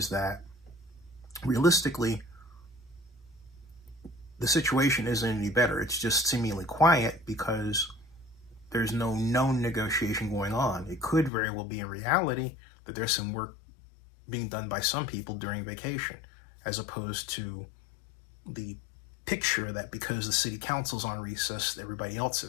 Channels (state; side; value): drops out; right; at 11.3 s